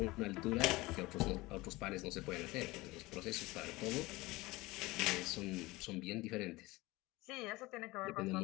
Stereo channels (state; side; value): quieter; right; 21.0 dB